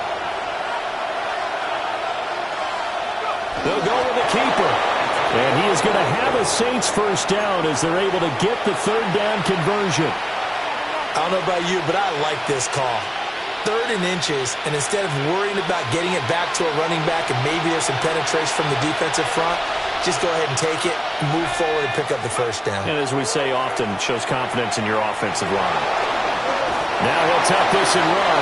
They'll go with the keeper. And he is going to have a Saints first down as they're able to get the 3rd down conversion. I don't know about you, but I like this call. 3rd and inches, and instead of worrying about getting it back to a running back and maybe there's some penetration from the defensive front, just go ahead and take it. move forward and pick up the first down. And as we say often, shows confidence in your offensive line. Now he'll tuck this and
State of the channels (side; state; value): both; identical; correlation 1.00